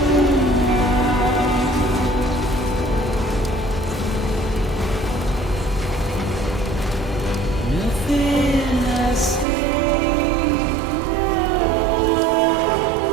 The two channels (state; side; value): drops out; left; at 9.5 s